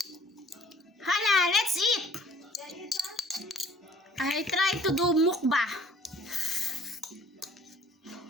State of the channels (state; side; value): normal; both; correlation 0.54